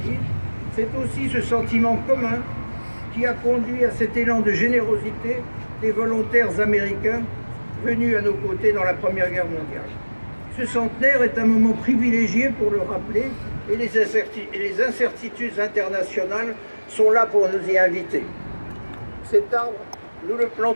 C'est aussi ce sentiment commun qui a conduit à cet élan de générosité des volontaires américains venus à nos côtés dans la Première Guerre mondiale. Ce centenaire est un moment privilégié pour le rappeler et les incertitudes internationales sont là pour nous y inviter. Cet arbre, nous le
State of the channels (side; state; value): both; inverted; correlation -1.00